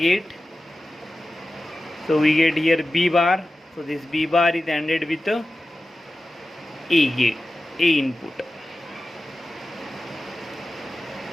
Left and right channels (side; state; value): both; normal; correlation 0.94